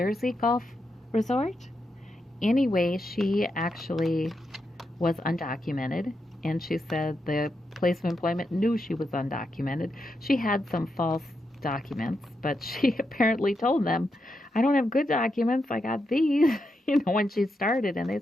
Golf Resort. Anyway, she actually was undocumented, and she said the place of employment knew she was undocumented. She had some false documents, but she apparently told them, I don't have good documents, I got these, when she started, and they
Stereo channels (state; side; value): normal; both; correlation 0.84